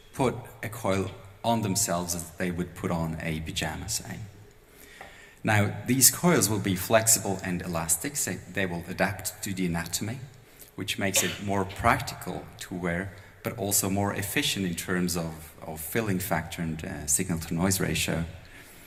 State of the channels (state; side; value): identical; both; correlation 1.00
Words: put a coil on themselves as they would put on a pajama, say. Now, these coils will be flexible and elastic, so they will adapt to the anatomy, which makes it more practical to wear, but also more efficient in terms of filling factor and signal-to-noise ratio.